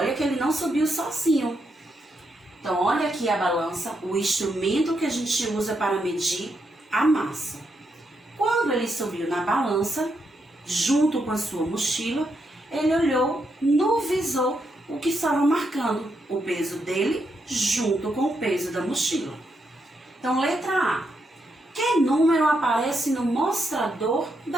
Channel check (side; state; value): both; normal; correlation 0.81